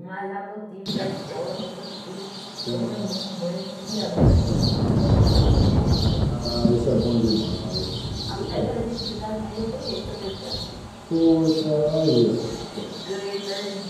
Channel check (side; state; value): both; identical; correlation 1.00